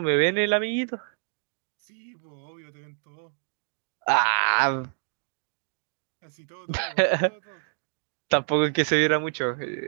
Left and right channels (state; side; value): silent; left; digital silence